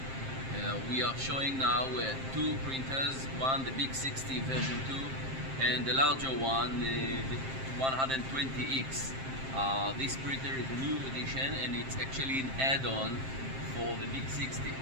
We are showing now two printers, one the Big60 version 2 and the larger one, the 120X. This printer is a new edition and it's actually an add-on for the Big60.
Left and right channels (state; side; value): late; left; 7.6 ms